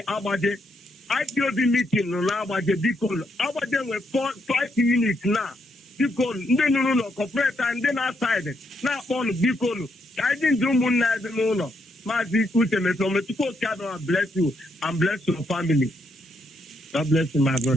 Abaje, IPOB meeting on Abaje, Bicol. Abaje were 5 units now. Bicol, no, corporate and then outside. Now on Bicol. I didn't do Muna, no. Mazi, Uche, Mefor, God bless you and bless your family. God bless you, my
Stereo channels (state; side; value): normal; both; correlation 0.77